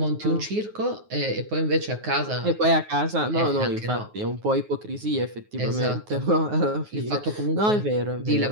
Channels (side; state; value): left; late; 9.5 ms